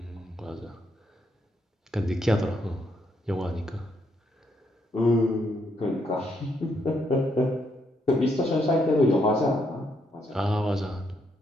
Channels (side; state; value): both; normal; correlation 0.76